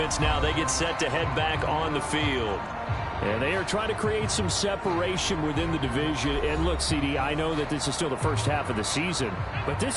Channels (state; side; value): identical; both; correlation 1.00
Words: now, they get set to head back on the field. And they are trying to create some separation within the division. And look, CD, I know that this is still the first half of the season, but